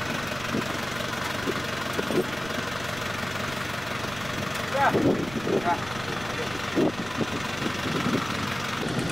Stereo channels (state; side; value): noise; right; rumble, 15 dB below the sound